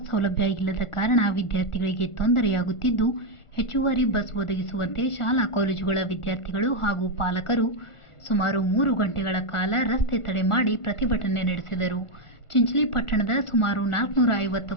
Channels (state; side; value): late; right; 1.5 ms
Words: ಸೌಲಭ್ಯ ಇಲ್ಲದ ಕಾರಣ ವಿದ್ಯಾರ್ಥಿಗಳಿಗೆ ತೊಂದರೆಯಾಗುತ್ತಿದ್ದು, ಹೆಚ್ಚುವರಿ ಬಸ್ ಒದಗಿಸುವಂತೆ ಶಾಲಾ ಕಾಲೇಜುಗಳ ವಿದ್ಯಾರ್ಥಿಗಳು ಹಾಗೂ ಪಾಲಕರು ಸುಮಾರು 3 ಗಂಟೆಗಳ ಕಾಲ ರಸ್ತೆ ತಡೆ ಮಾಡಿ ಪ್ರತಿಭಟನೆ ನಡೆಸಿದರು. ಚಿಂಚಲಿ ಪಟ್ಟಣದ ಸುಮಾರು